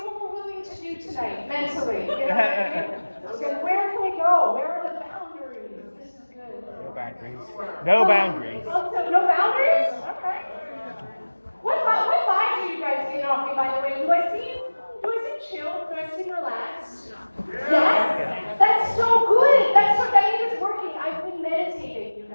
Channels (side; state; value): both; inverted; correlation -1.00